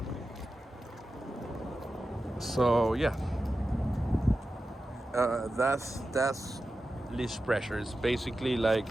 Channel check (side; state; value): both; normal; correlation 0.92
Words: So yeah, that's leash pressure. It's basically